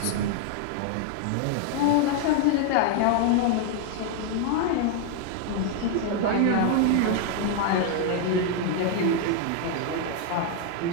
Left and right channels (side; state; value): both; different; correlation 0.00